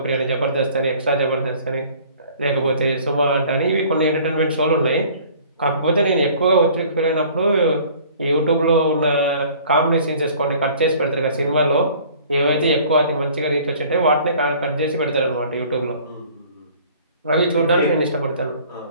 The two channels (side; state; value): both; inverted; correlation -0.51